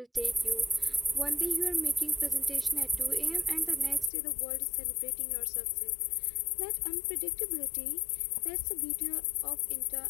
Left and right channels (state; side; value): drops out; right; at 4.1 s